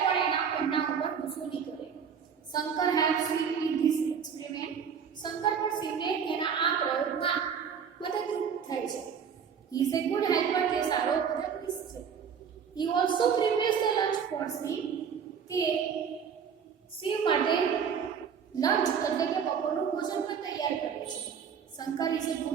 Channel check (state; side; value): quieter; left; 7.1 dB